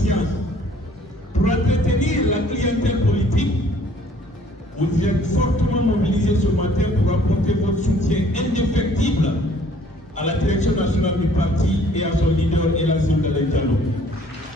pour entretenir la clientèle politique, vous êtes fortement mobilisés ce matin pour apporter votre soutien indéfectible à la direction nationale du parti et à son leader, Elassine Galaye Diallo.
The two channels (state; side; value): normal; both; correlation 0.57